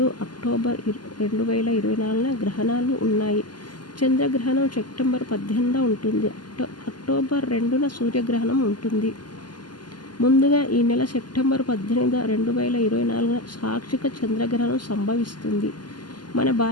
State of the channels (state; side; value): late; right; 0.71 ms